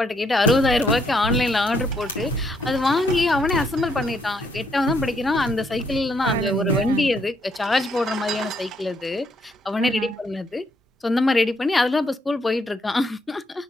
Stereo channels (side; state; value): both; normal; correlation 0.73